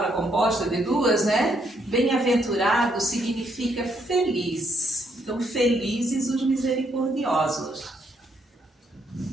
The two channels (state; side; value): normal; both; correlation 0.73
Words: composta de duas, né? Bem-aventurado significa feliz. Então, felizes os misericordiosos.